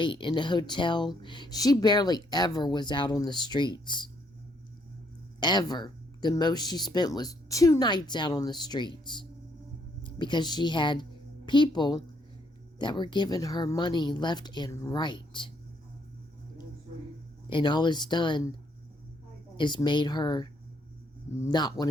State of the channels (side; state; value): both; normal; correlation 0.71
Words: in the hotel, she barely ever was out on the streets. Ever. The most she spent was 2 nights out on the streets. Because she had people that were giving her money left and right. And all it's done is made her not want